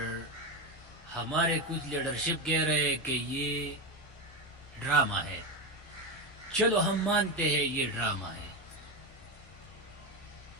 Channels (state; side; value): normal; both; correlation 0.13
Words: ہمارے کچھ لیڈرشپ کہہ رہے کہ یہ ڈرامہ ہے. چلو ہم مانتے ہیں یہ ڈرامہ ہے،